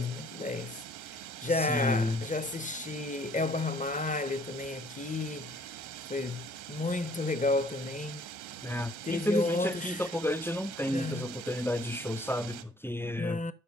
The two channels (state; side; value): normal; both; correlation 0.59